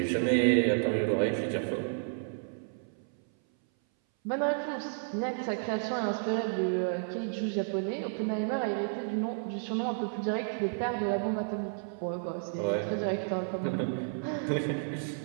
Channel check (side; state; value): left; silent; 57 dB below the other